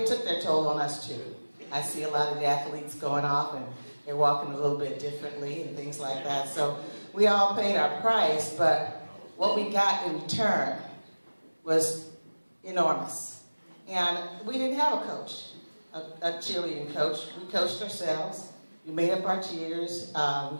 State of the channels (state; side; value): inverted; both; correlation -1.00